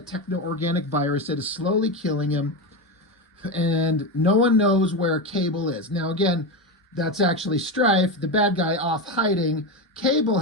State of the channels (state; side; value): normal; both; correlation 0.16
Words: virus that is slowly killing him, and no one knows where Cable is. Now, again, that's actually Strife, the bad guy, off hiding. Cable